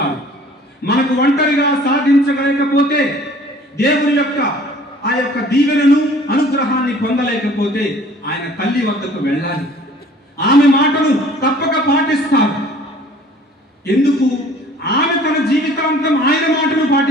మనకు ఒంటరిగా సాధించలేకపోతే, దేవుని యొక్క ఆ యొక్క దీవెనను, అనుగ్రహాన్ని పొందలేకపోతే ఆయన తల్లి వద్దకు వెళ్ళాలి. ఆమె మాటను తప్పక పాటిస్తారు. ఎందుకు? ఆమె తన జీవితాంతం ఆయన మాటను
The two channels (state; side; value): normal; both; correlation 0.52